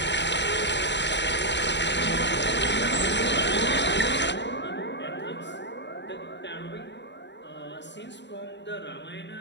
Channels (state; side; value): late; right; 0.52 ms